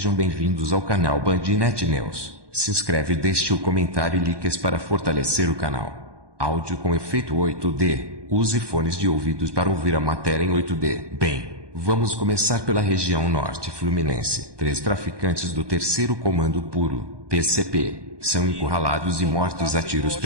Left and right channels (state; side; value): late; left; 1.2 ms